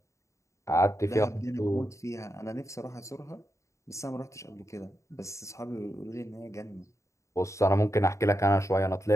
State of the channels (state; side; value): late; right; 0.14 ms